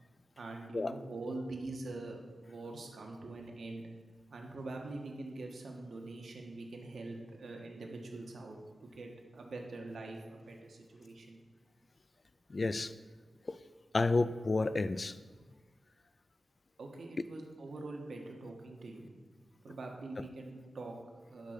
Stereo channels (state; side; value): normal; both; correlation 0.94